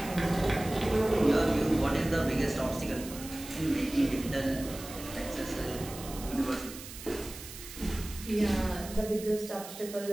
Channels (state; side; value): noise; right; hiss, 13 dB below the sound